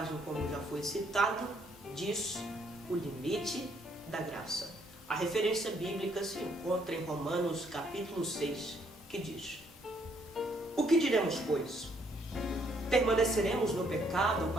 como já foi citado, diz o limite da graça. A referência bíblica se encontra em Romanos capítulo 6, que diz: O que diremos, pois? Permaneceremos no pecado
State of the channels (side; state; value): both; normal; correlation 0.69